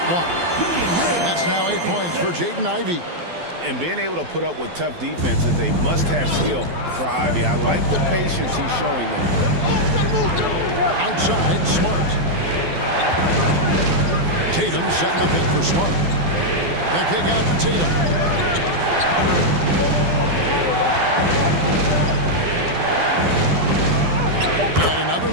block. That's now 8 points for Jaden Ivey. And being able to put up with tough defense is a must-have skill for Ivy. I like the patience he's showing them. Outside, Smart. Tatum setting the pick for Smart. The kick out to Tatum. And another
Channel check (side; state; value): left; late; 12 ms